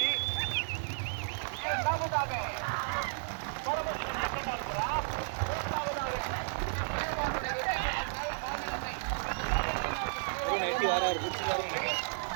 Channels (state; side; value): silent; left; digital silence